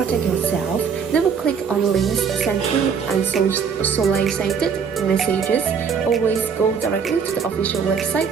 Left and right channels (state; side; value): quieter; left; 6.4 dB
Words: yourself, never click on links sent through unsolicited messages. Always go directly to the official website